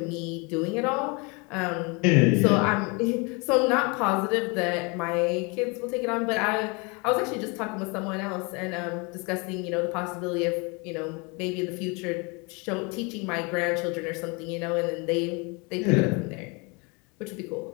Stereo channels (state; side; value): quieter; right; 30.1 dB